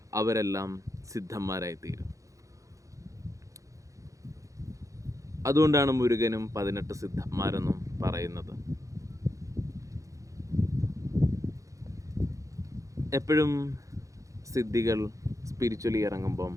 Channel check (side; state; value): left; late; 0.16 ms